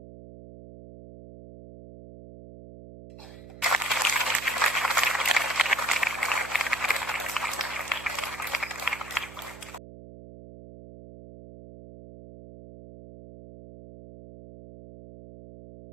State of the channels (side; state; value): right; noise; hum, 16 dB below the sound